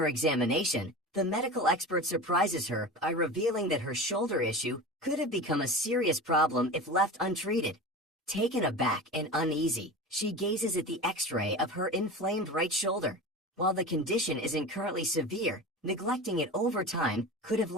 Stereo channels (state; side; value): normal; both; correlation 0.30